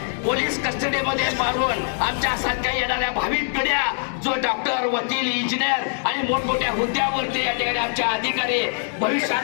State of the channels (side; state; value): right; silent; 63 dB below the other